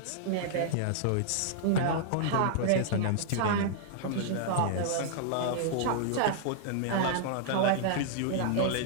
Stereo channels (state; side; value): different; both; correlation -0.01